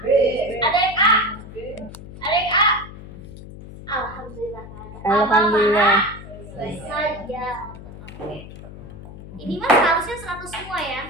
Ada yang A? Ada yang A? Alhamdulillah. Alhamdulillah. Sayyaratun. Oke. Ini mas harusnya 100 semua ya?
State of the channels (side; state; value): left; noise; hum, 14 dB below the sound